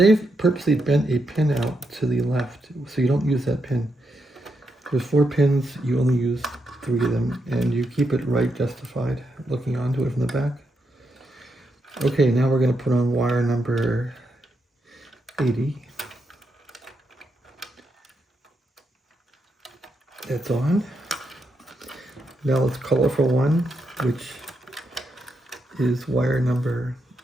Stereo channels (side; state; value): both; normal; correlation 0.82